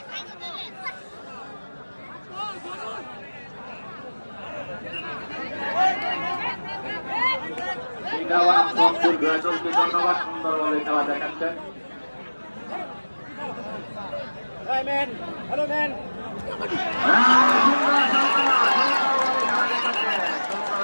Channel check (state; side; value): inverted; both; correlation -1.00